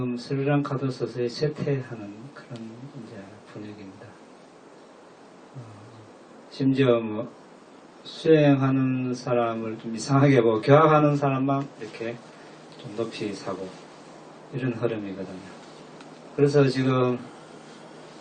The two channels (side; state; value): both; identical; correlation 1.00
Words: 스리랑카도 서서히 쇠퇴하는 그런 이제 분위기입니다. 심지어 뭐 수행하는 사람을 좀 이상하게 보고 교학하는 사람만 이렇게 좀 높이 사고 이런 흐름이거든요. 그래서 지금